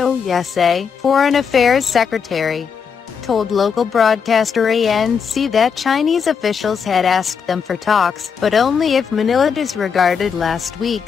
Yasay, Foreign Affairs Secretary, told local broadcaster ANC that Chinese officials had asked them for talks, but only if Manila disregarded last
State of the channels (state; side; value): quieter; right; 6.5 dB